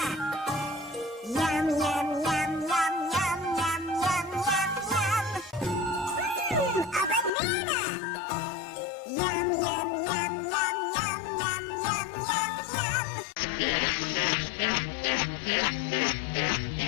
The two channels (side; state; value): right; drops out; at 7.3 s